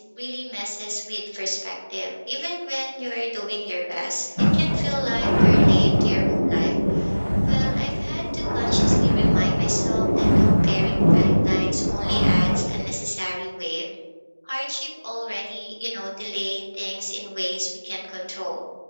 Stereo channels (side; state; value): both; inverted; correlation -1.00